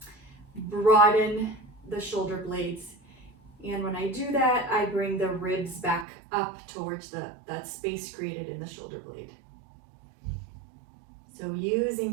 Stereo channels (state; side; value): drops out; left; at 6.1 s